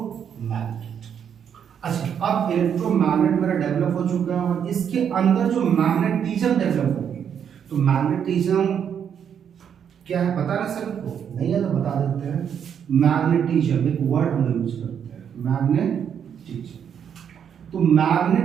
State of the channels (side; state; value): left; quieter; 8.2 dB